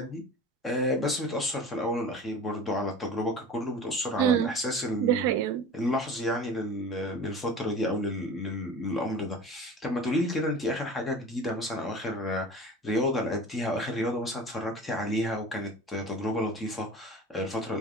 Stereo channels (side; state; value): both; normal; correlation 0.37